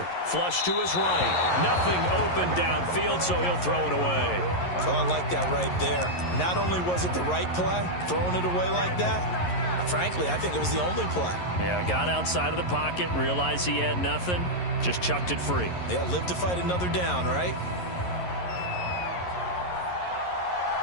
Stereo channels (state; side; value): late; right; 11 ms